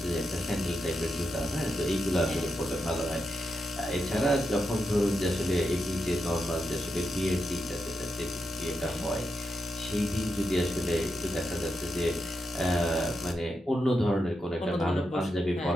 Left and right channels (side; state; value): both; normal; correlation 0.86